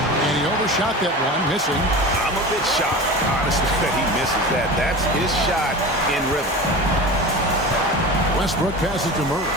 And he overshot that one, missing. I'm a bit shocked, honestly, that he misses that. That's his shot in rhythm. Westbrook passes to Murray.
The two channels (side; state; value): both; normal; correlation 0.31